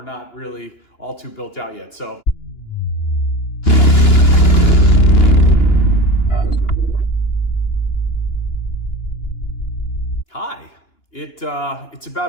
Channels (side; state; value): right; late; 2.9 ms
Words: not really all too built out yet. So. Hi, it's